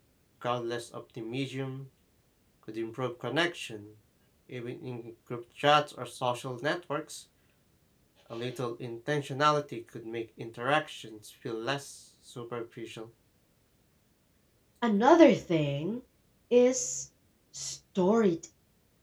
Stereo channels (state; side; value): identical; both; correlation 1.00